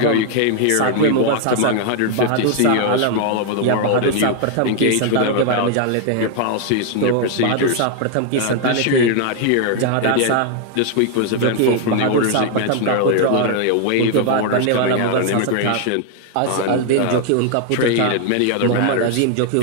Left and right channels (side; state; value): both; different; correlation 0.00